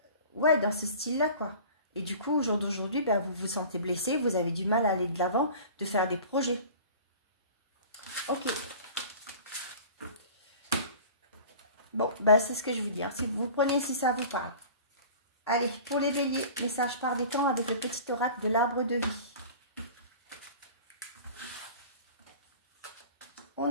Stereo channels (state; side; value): inverted; both; correlation -0.41